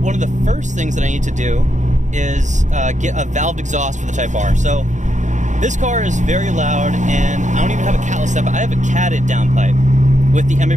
of the first things that I need to do is get a valved exhaust for the Type R. So this car is very loud, and I don't even have a catless step. I have a catted downpipe with the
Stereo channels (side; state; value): left; late; 0.35 ms